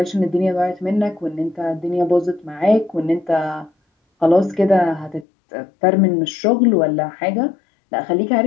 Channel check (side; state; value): right; drops out; at 5.2 s